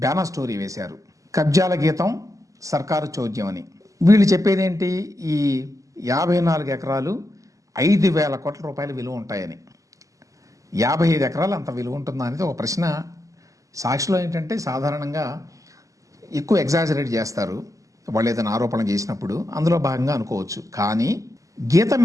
స్టోరీ వేశారు. కబ్జాల గీతం సర్కారు చోద్యం అని. వీళ్ళు చెప్పేది ఏంటి? ఈ 54 ఎకరాలు 5,000 కోట్ల రూపాయల విలువ ఉంటాయని. 55 ఎకరాలు అంత విలువ ఉంటుందా అనేది ఒక ప్రశ్న. సాక్షిలో ఏంటంటే సాధారణంగా ఎక్కువ ఎగ్జాజరేట్ చేస్తారు వాళ్ళు ఏదైనా ఆరోపణ చేసినప్పుడు, అందులో భాగంగా అనుకోవచ్చు. కానీ గీతం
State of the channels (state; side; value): late; left; 0.16 ms